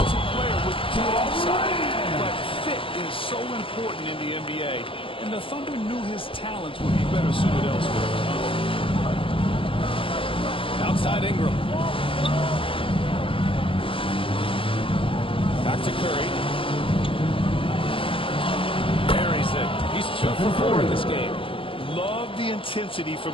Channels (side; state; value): right; late; 0.25 ms